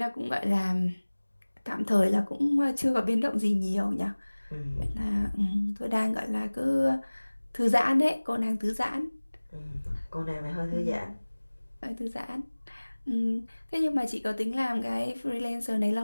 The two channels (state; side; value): inverted; both; correlation -1.00